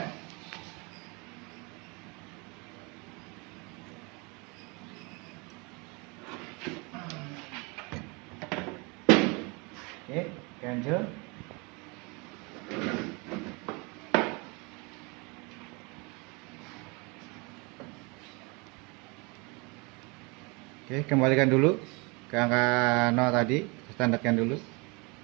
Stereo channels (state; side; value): quieter; left; 29.1 dB